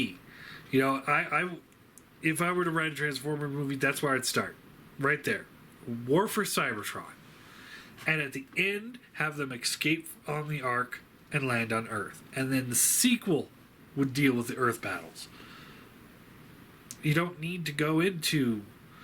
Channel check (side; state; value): both; identical; correlation 1.00